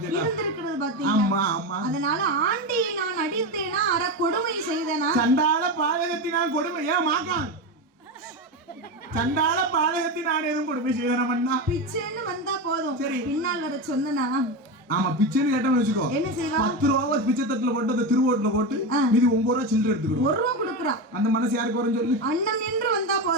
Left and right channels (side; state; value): both; normal; correlation 0.17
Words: இருந்திருக்கிறது பாத்தீங்களா? ஆமா ஆமா. அதனால ஆண்டியை நான் அடித்தேனா அற கொடுமை செய்தேனா? சண்டாள பாதகத்தினால் கொடுமை ஏன் மாக்கான் சண்டாள பாதகத்தினால் எதுவும் கொடுமை செய்தனா பிச்சைன்னு வந்தா போதும். சரி. பின்னால் வர சொன்னா ஆமா பிச்சைன்னு கேட்டோம்னு வச்சுக்கோ, என்ன செய்வா? 10 ரூபாவை பிச்சை தட்டுல போட்டு அந்த திருவோட்டுல போட்டு மீதி 9 ரூபா சில்லறை எடுத்துக்கிடும். 1 ரூபா கொடுக்குறா. அந்த மனசு யாருக்கு வரும் சொல்லு? அண்ணன் நின்று வந்தா